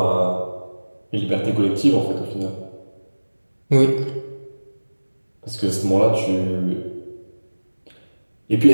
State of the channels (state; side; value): inverted; both; correlation -1.00